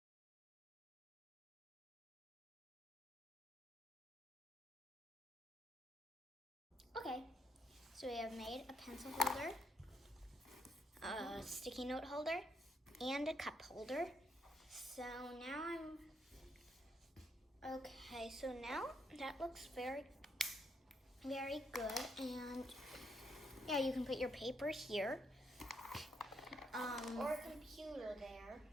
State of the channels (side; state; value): both; normal; correlation 0.76